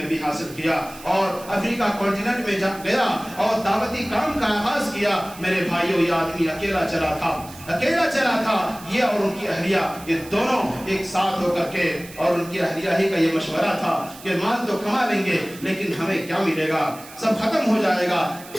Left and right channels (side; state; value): right; noise; hiss, 18 dB below the sound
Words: بھی حاصل کیا اور افریقہ کانٹیننٹ میں گیا اور دعوتی کام کا آغاز کیا۔ میرے بھائیوں یہ آدمی اکیلا چلا تھا، یہ اور ان کی اہلیہ یہ دونوں ایک ساتھ ہو کر کے، اور ان کی اہلیہ ہی کا یہ مشورہ تھا کہ مال تو کما لیں گے لیکن ہمیں کیا ملے گا، سب ختم ہو جائے گا،